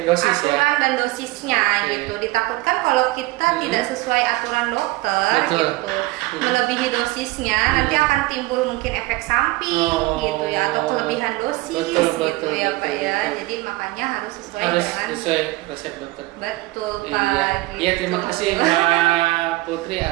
aturan dan dosisnya gitu. Ditakutkan kalau kita tidak sesuai aturan dokter gitu, melebihi dosisnya nanti akan timbul mungkin efek samping gitu ya, atau kelebihan dosis gitu ya Pak ya. Jadi makanya harus sesuai resep dokter. Betul Pak. Iya, terima kasih Mbak Putri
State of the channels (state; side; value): quieter; left; 20.1 dB